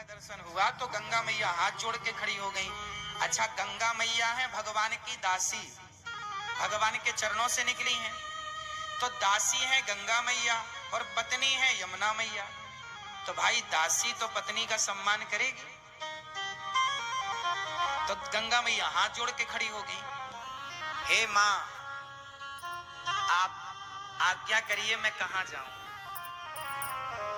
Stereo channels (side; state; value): both; identical; correlation 1.00